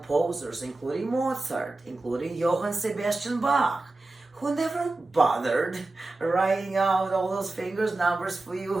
including Mozart, including Johann Sebastian Bach, who never bothered writing out all those fingers numbers for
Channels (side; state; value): left; quieter; 3.1 dB